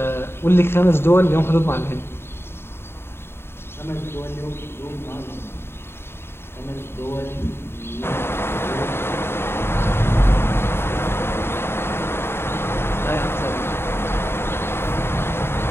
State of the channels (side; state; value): right; late; 0.11 ms